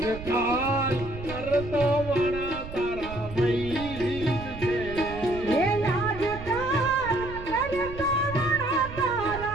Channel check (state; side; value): noise; right; rumble, 12 dB below the sound